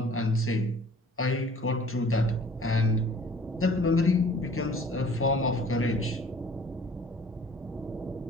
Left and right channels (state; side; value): normal; both; correlation 0.51